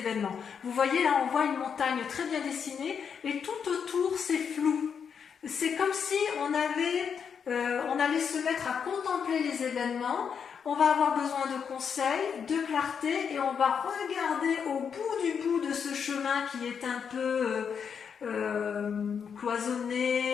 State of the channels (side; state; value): right; quieter; 6.9 dB